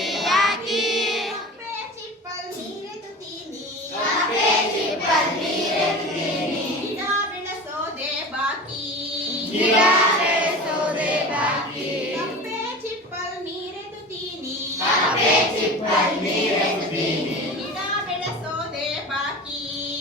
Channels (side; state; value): both; normal; correlation 0.34